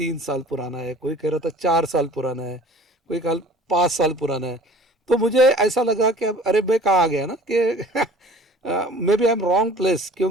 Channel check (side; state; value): both; normal; correlation 0.47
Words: साल पुराना है, कोई कह रहा था 4 साल पुराना है, कोई कल 5 साल पुराना है। तो मुझे ऐसा लगा कि अब अरे मैं कहाँ आ गया ना कि maybe I am wrong place.